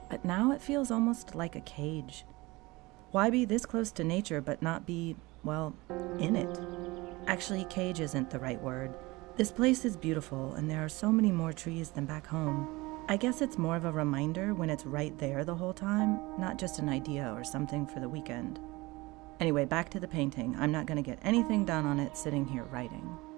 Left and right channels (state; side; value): quieter; left; 22.2 dB